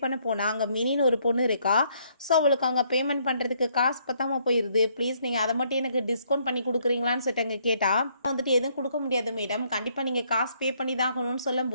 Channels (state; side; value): inverted; both; correlation -0.69